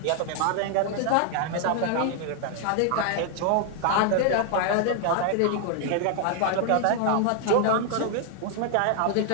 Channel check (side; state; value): both; different; correlation 0.00